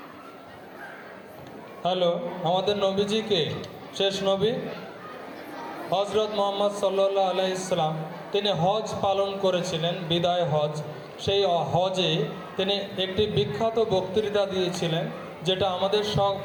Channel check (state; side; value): identical; both; correlation 1.00